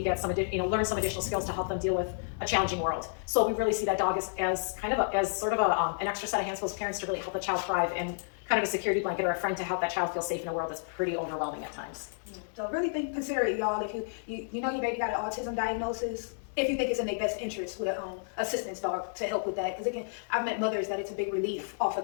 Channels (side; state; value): right; silent; digital silence